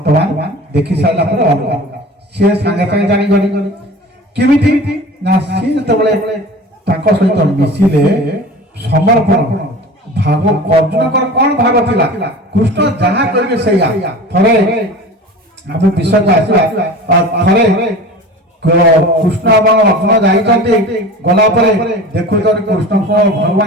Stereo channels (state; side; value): normal; both; correlation 0.37